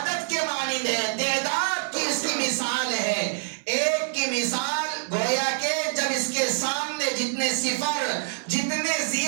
کے مانند ہے، تعداد کی اس کی مثال ہے. ایک کی مثال گویا کہ جب اس کے سامنے جتنے صفر جتنے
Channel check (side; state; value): left; silent; 61 dB below the other